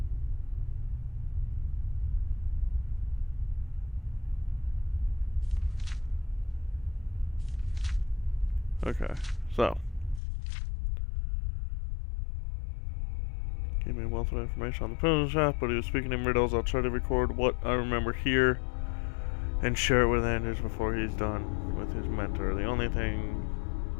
Okay, so gave me a wealth of information on the Pilgrim's Path, but he was speaking in riddles. I'll try to record what I remember here and share it with Anders before he's done with his mentor. The only thing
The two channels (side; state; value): right; drops out; at 10.2 s